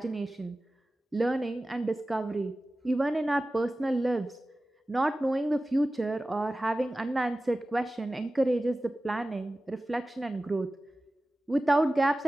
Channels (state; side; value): normal; both; correlation 0.96